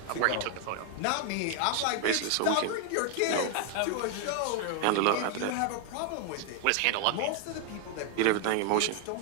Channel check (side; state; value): both; different; correlation 0.00